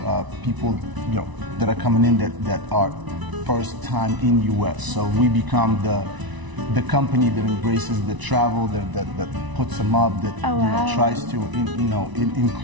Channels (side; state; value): left; late; 1.0 ms